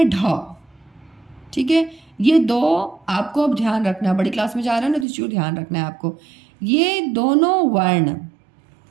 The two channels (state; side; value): drops out; left; at 5.1 s